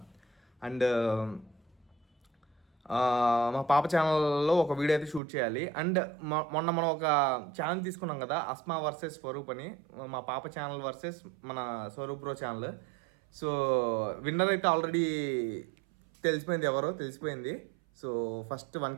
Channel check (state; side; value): drops out; left; at 5.2 s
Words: అండ్ మా పాప ఛానల్లో ఒక వీడియో అయితే షూట్ చేయాలి. అండ్ మొన్న మనం ఒక ఛానల్ తీసుకున్నాం కదా, అస్మా వర్సెస్ స్వరూప్ అని. మా పాప ఛానల్ వర్సెస్ మన Swaroop bro channel. So winner అయితే ఆల్రెడీ తెలిసిపోయింది. So first